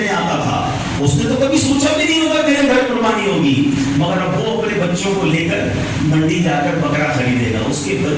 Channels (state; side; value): identical; both; correlation 1.00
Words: آتا تھا اس نے تو کبھی سوچا بھی نہیں ہوگا میرے گھر قربانی ہوگی مگر اب وہ اپنے بچوں کو لے کر منڈی جا کر بکرا خریدے گا. اس کے